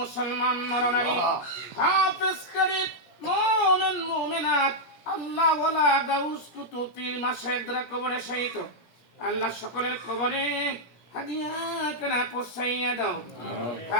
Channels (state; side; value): late; right; 17 ms